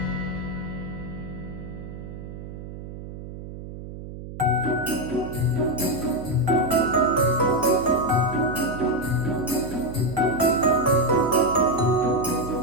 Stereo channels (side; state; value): right; noise; hum, 11 dB below the sound